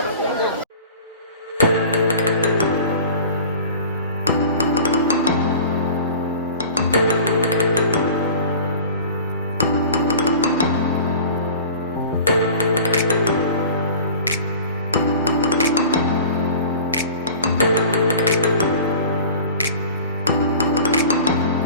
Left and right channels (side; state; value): both; inverted; correlation -0.40